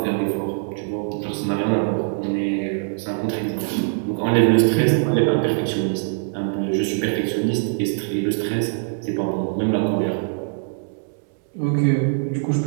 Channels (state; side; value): silent; left; 64 dB below the other